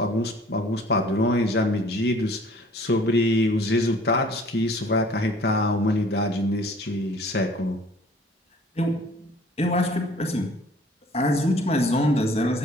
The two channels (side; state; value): both; normal; correlation 0.53